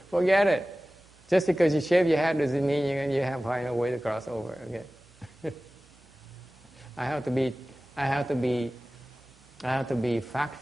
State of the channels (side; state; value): both; normal; correlation 0.97